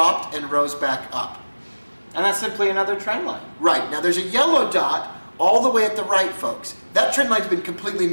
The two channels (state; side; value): inverted; both; correlation -1.00